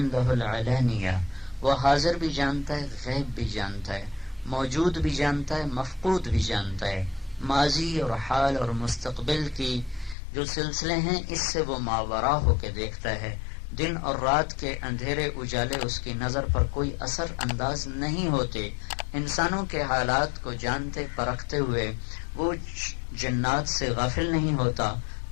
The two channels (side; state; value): right; drops out; at 10.2 s